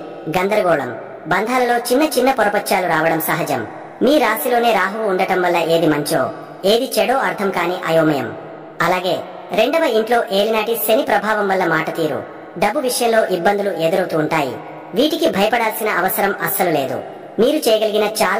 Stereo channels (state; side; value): identical; both; correlation 1.00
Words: గందరగోళం, బంధాలలో చిన్న చిన్న పొరపచ్చాలు రావడం సహజం. మీ రాశిలోనే రాహువు ఉండటం వల్ల ఏది మంచో ఏది చెడో అర్థం కాని అయోమయం. అలాగే 2వ ఇంట్లో ఏలినాటి శని ప్రభావం వల్ల మాట తీరు, డబ్బు విషయంలో ఇబ్బందులు ఎదురవుతూ ఉంటాయి. వీటికి భయపడాల్సిన అవసరం అస్సలు లేదు. మీరు చేయగలిగిన